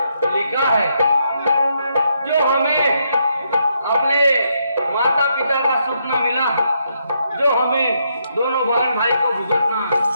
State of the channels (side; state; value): both; inverted; correlation -0.77